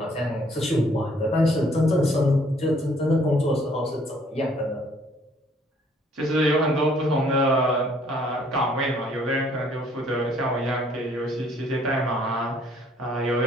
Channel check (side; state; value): both; normal; correlation 0.62